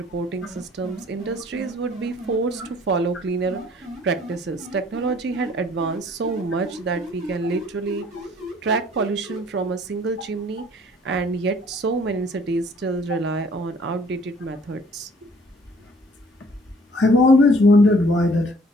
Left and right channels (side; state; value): both; normal; correlation 0.57